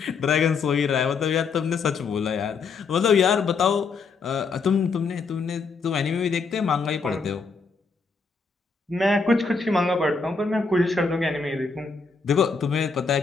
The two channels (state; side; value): quieter; right; 4.7 dB